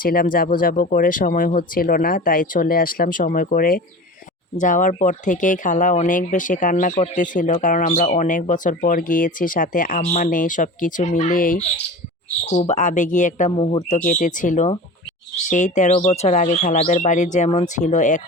যাব করে সময় হচ্ছিল না। তাই চলে আসলাম সময় করে। যাওয়ার পর থেকেই খালা অনেক বেশি কান্না করতেছিল কারণ আমরা অনেক বছর পর গিয়েছি, সাথে আম্মা নেই। সবকিছু মিলিয়েই খুব আবেগী একটা মুহূর্ত কেটেছিল। সেই ১৩ বছর আগে খালাদের বাড়ি যেমন ছিল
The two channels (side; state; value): both; normal; correlation 0.34